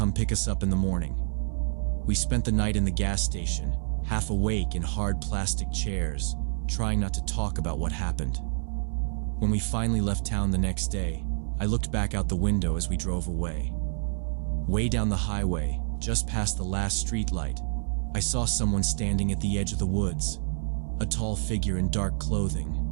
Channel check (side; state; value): left; silent; 59 dB below the other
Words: pick us up in the morning. We spent the night in the gas station, half awake in hard plastic chairs, trying not to talk about what happened. When we finally left town the next day, I looked back out the window as we drove away. Way down the highway, just past the last streetlight, I saw someone standing at the edge of the woods. A tall figure in dark clothing,